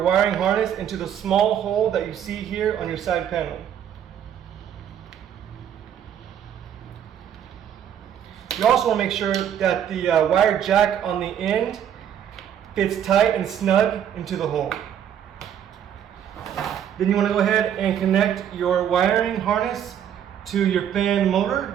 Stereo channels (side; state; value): left; quieter; 9.4 dB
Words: harness into the small hole that you see here on your side panel. You also want to make sure that the wire jack on the end fits tight and snug into the hole. Then you want to go ahead and connect your wiring harness to your fan